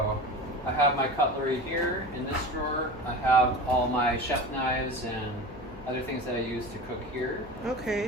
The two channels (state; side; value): noise; left; hum, 17 dB below the sound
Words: I have my cutlery here in this drawer. I have all my chef knives and other things that I use to cook here.